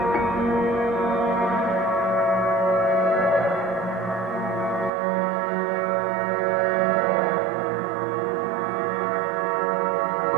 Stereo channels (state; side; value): drops out; left; at 4.9 s